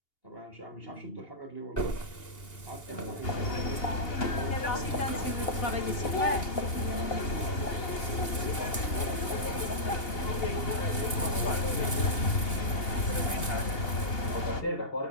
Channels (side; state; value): right; late; 2.8 ms